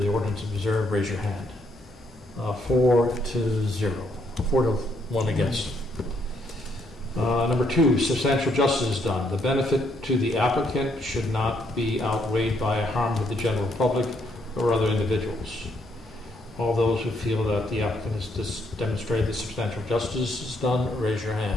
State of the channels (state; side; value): normal; both; correlation 0.73